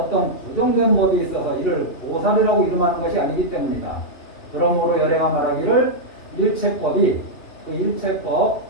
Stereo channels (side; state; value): right; late; 2.9 ms